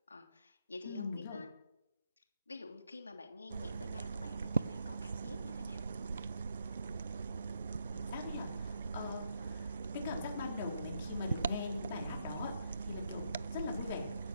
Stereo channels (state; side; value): inverted; both; correlation -0.78